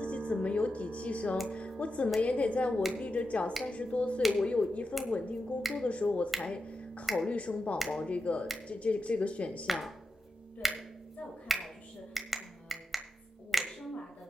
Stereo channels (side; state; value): both; normal; correlation 0.89